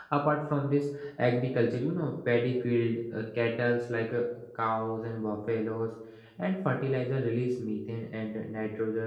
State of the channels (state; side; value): identical; both; correlation 1.00